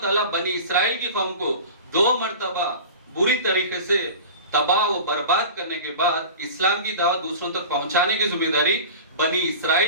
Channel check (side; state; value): both; inverted; correlation -0.36